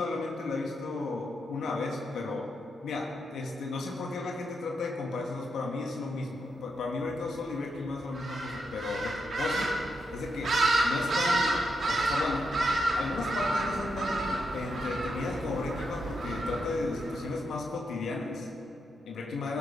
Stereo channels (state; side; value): normal; both; correlation 0.83